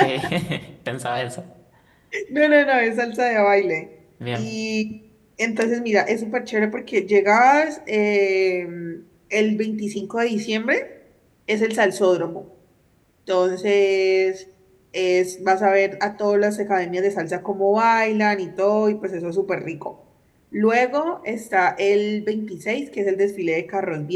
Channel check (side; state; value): both; identical; correlation 1.00